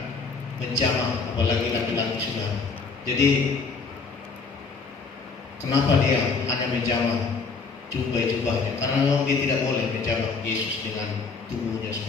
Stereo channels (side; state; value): right; quieter; 4.7 dB